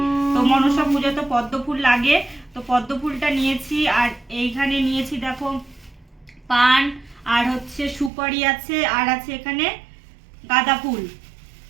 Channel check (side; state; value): left; drops out; at 8.1 s